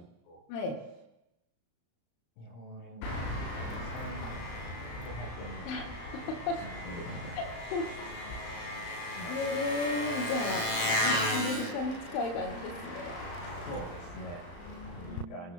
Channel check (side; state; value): right; late; 35 ms